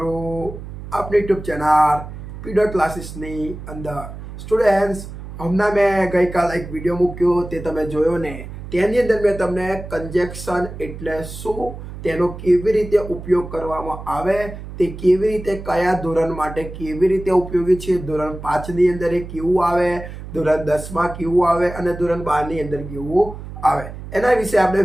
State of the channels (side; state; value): right; noise; hum, 11 dB below the sound